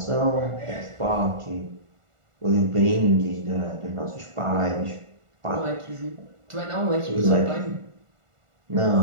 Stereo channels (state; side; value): late; left; 1.4 ms